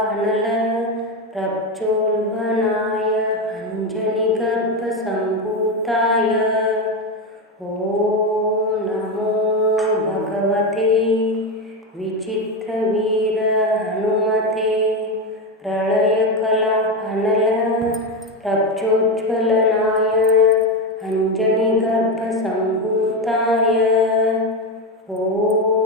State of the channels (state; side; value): normal; both; correlation 0.14